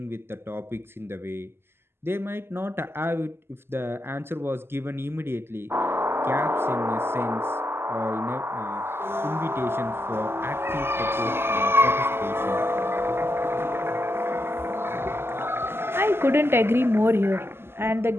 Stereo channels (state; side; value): late; left; 0.12 ms